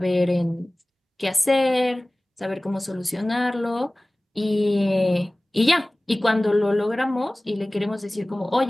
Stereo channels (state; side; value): normal; both; correlation 0.98